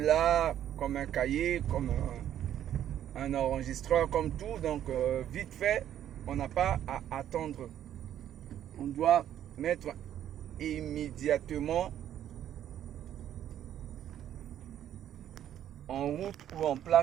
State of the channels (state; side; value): quieter; left; 10.9 dB